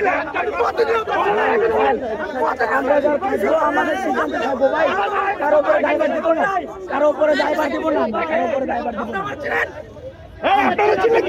আমরা যারা পাইছো আমাদের সিদ্ধান্ত থাকবো ভাই, কারো উপরে দায়ভার দিব না, কারো উপরে দায়ভার দিব না, কারো উপরে দায়ভার দিব না। আপনারা ছিলেন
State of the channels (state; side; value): identical; both; correlation 1.00